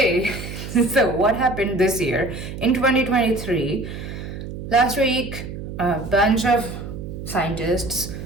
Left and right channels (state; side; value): noise; right; hum, 9 dB below the sound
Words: so what happened this year in 2023? Last week, a bunch of scientists